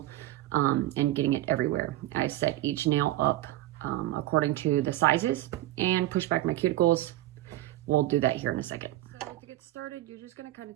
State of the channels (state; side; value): quieter; left; 15.7 dB